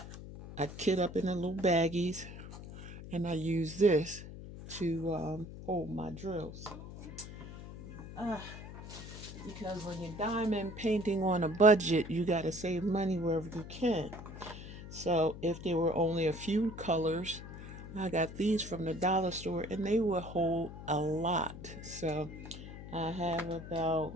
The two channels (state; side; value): noise; left; hum, 12 dB below the sound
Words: I kit up in the little baggies, and I use this to hold my drills. Because when you're diamond painting on a budget, you got to save money wherever you can. So if there were only a few colors, I got these from the dollar store and they will hold a lot. So I have